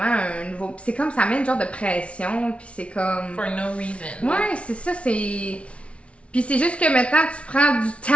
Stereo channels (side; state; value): right; late; 0.061 ms